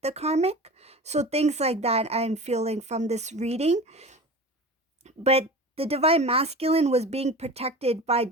the karmic. So things like that I'm feeling from this reading. But the divine masculine was being protected by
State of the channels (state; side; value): normal; both; correlation 0.34